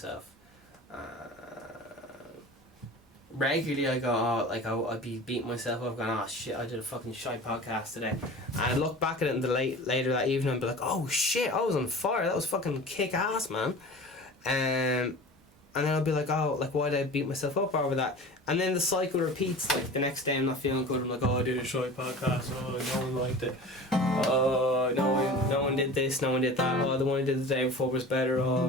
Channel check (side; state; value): both; normal; correlation 0.37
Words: Regularly I go, I'd be beating myself up going, oh shit, I did a fucking shy podcast today. And I'd look back at it in the later that evening and be like, oh shit, I was on fire, that was fucking kick ass, man. And then I'll be like, oh, like, why did I beat myself up over that? And then the cycle repeats. Like, the next day I'm not feeling good. I'm like, oh, I did a shy podcast. Oh, no one liked it. Oh, no one did this. No one did that. Oh, the one I did the day before was better. Oh,